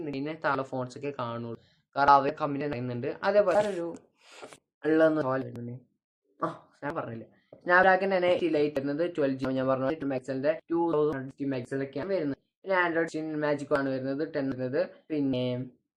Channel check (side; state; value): both; identical; correlation 1.00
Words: ഇതിനെ താഴെ ഫോൺസ് ഒക്കെ കാണുള്ളൂ. കാരണം അവർ കമ്പനി പറയുന്നുണ്ട്. അതേപോലെ ഒരു ഞാൻ പറഞ്ഞില്ല, സ്നാപ്ഡ്രാഗൺ തന്നെ ലൈറ്റ് വരുന്നത് 12GB. ഞാൻ പറഞ്ഞു 2050 മെഗാപിക്സലൊക്കെയാണ് വരുന്നത്. പിന്നെ ആൻഡ്രോയിഡ് മാജിക് ആണ് വരുന്നത് 10 വരുന്നത്. പിന്നെ